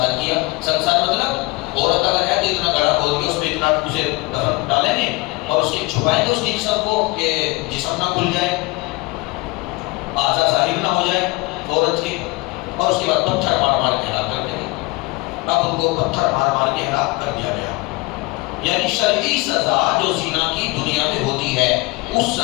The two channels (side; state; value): right; quieter; 23.5 dB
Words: کیا. سنسار مطلب عورت اگر ہے تو اتنا گڑھا کھود کے اس میں اتنا اسے دفن ڈالیں گے اور اس کی چھپائیں گے اس کی جسم کو کہ جسم نہ کھل جائے, اعضاء ظاہر نہ ہو جائے عورت کے, اور اس کے بعد پتھر مار مار کے ہلاک کر دیں گے. اب ان کو پتھر مار مار کے ہلاک کر دیا گیا. یعنی شرعی سزا جو زنا کی دنیا میں ہوتی ہے اس